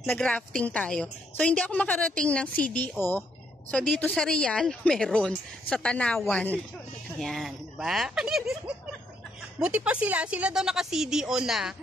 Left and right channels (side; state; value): both; normal; correlation 0.73